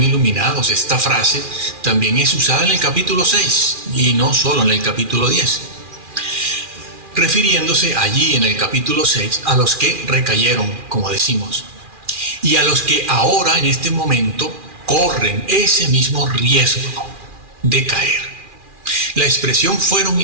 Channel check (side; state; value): left; late; 2.4 ms